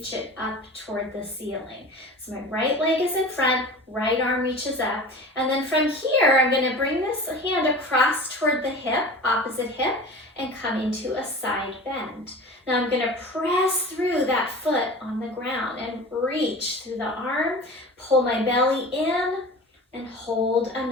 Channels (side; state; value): both; normal; correlation 0.36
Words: it up toward the ceiling. So my right leg is in front, right arm reaches up, and then from here, I'm gonna bring this hand across toward the hip, opposite hip, and come into a side bend. Now I'm gonna press through that foot on the ground and reach through the arm, pull my belly in, and hold